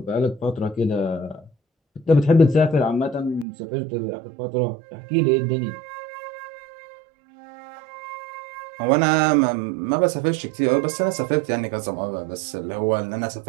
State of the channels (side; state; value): left; drops out; at 3.5 s